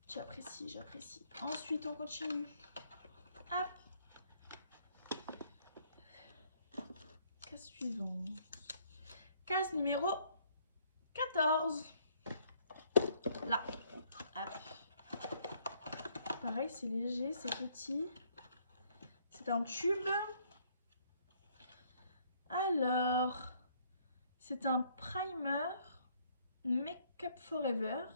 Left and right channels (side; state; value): both; inverted; correlation -0.66